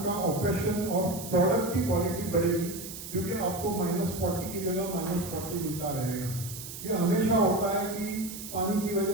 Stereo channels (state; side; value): noise; right; hiss, 10 dB below the sound